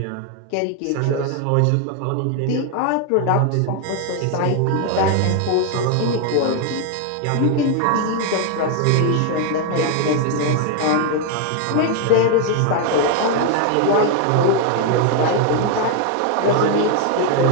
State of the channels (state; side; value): different; both; correlation 0.00